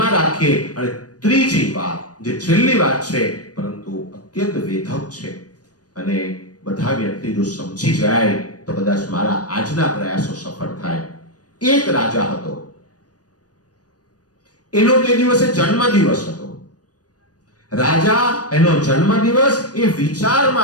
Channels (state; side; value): late; right; 0.68 ms